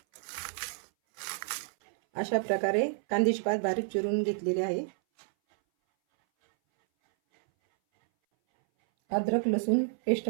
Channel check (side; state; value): left; silent; 58 dB below the other